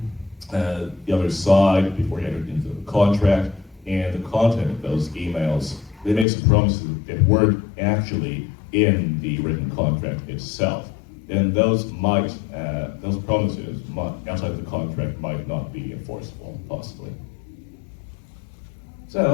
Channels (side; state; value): right; drops out; at 6.2 s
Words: the other side before you entered into the contract, and the content of those emails, they made some promises that weren't actually in the written contract itself, then those promises outside of the contract might not be enforceable, possibly.